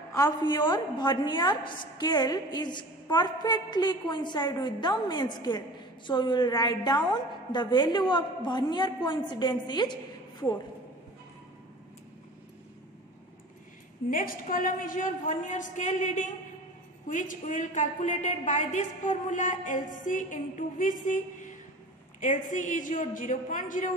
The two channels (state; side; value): normal; both; correlation 0.39